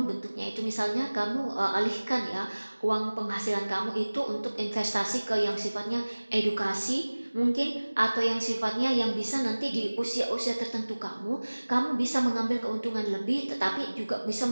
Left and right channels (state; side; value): inverted; both; correlation -1.00